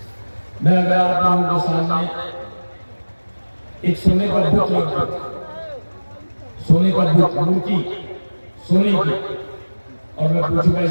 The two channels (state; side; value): inverted; both; correlation -1.00